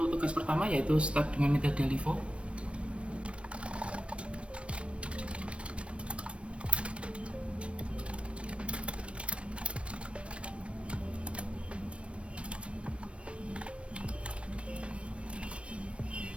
tugas pertama yaitu start dengan metode LIFO.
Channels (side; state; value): left; late; 0.060 ms